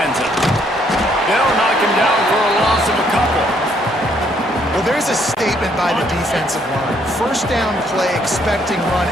They'll knock him down for a loss of a couple. Well, there's a statement by the defensive line. First down play, expecting run,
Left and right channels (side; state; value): both; normal; correlation 0.69